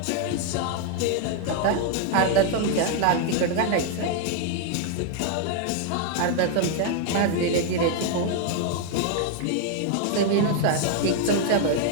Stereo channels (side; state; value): both; different; correlation 0.00